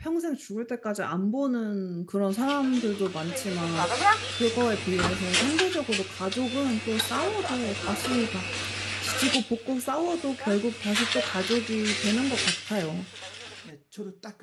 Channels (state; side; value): identical; both; correlation 1.00